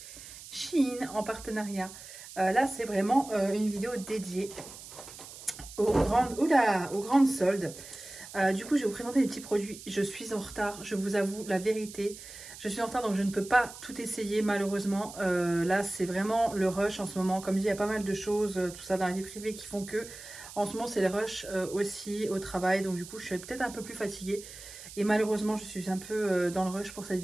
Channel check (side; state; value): right; noise; hiss, 15 dB below the sound